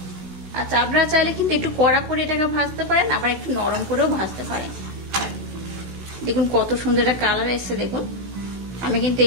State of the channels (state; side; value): late; left; 16 ms